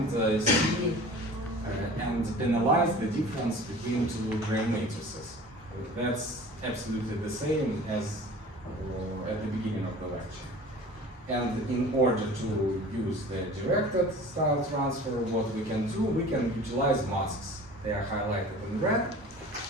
see and analyze the difference between two Gram matrices. That's absolutely the same as at the beginning of the lecture. And in order to use the directed style transfer, what we can do, we can utilize masks. They are highlighted in red.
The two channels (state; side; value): normal; both; correlation 0.42